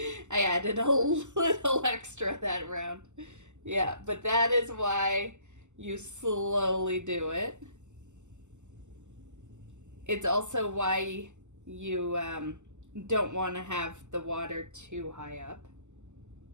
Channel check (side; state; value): left; late; 0.84 ms